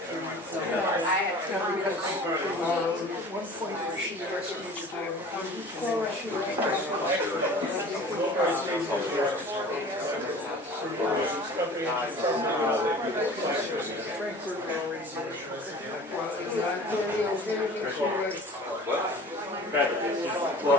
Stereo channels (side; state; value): both; normal; correlation 0.43